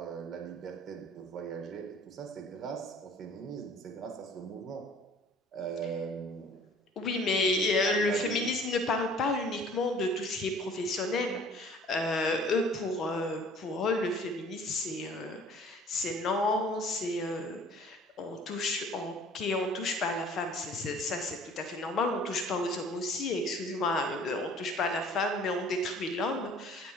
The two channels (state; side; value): normal; both; correlation 0.51